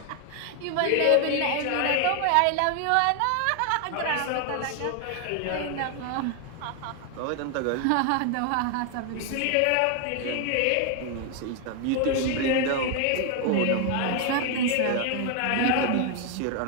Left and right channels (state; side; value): different; both; correlation 0.00